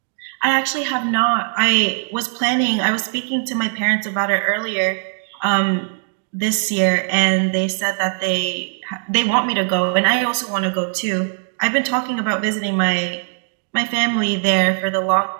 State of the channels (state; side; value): silent; left; digital silence